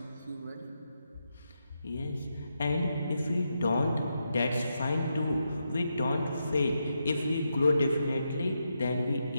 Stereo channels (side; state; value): both; inverted; correlation -0.84